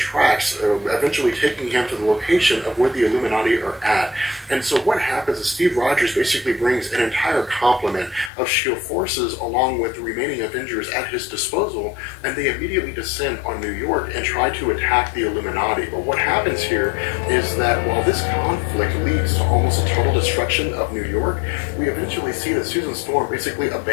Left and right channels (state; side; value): drops out; right; at 8.3 s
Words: eventually taking him to the location of where the Illuminati are at. And so what happens is Steve Rogers basically brings an entire complement of S.H.I.E.L.D. forces along with the remaining Avengers at his disposal, and they immediately descend on New York and try to attack the Illuminati. But what happens here is that while this conflict leads to almost a total destruction of New York, we eventually see that Susan Storm basically